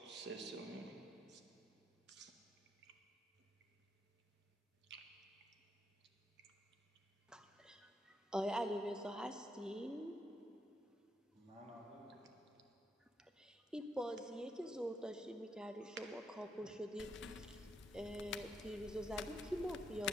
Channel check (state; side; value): normal; both; correlation 0.79